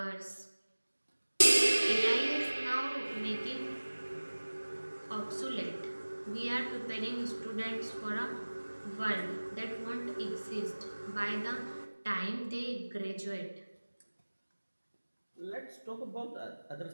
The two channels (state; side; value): inverted; both; correlation -1.00